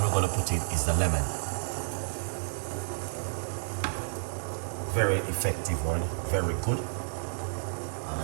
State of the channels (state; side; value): silent; left; 57 dB below the other